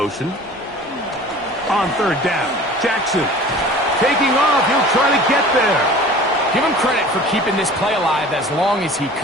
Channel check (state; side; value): normal; both; correlation 0.43